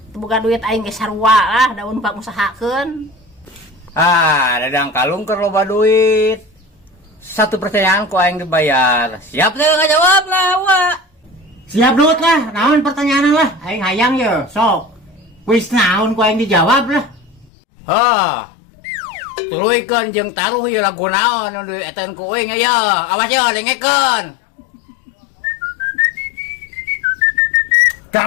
buka duit aing ge sarua lah daun pak usahakeun. Dadang kalung keur loba duit. Satu pertanyaan ku aing dibayar. Siap teh ngajawab lah, Wak. Siap dut lah, naon pertanyaan lah. Aing hayang ye, sok. Kuis naon ku aing dijawab lah. Tuluikeun jeung taruh ieu lagu naon nu dieteun ku euing aya. Awas ye dengekeun.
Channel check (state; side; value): drops out; right; at 17.5 s